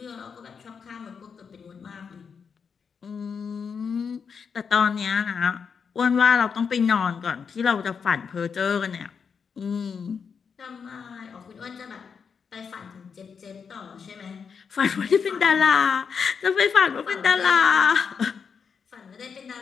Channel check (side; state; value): right; quieter; 6.2 dB